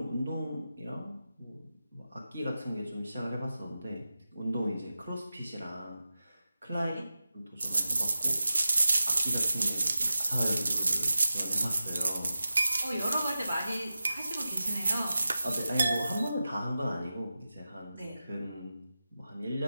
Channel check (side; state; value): both; inverted; correlation -0.92